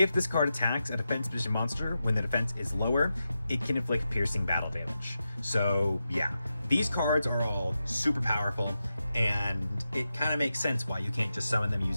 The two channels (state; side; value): inverted; both; correlation -0.90